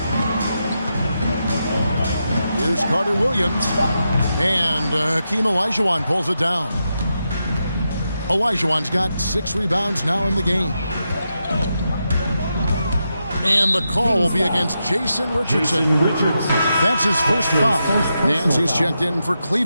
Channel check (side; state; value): both; inverted; correlation -0.86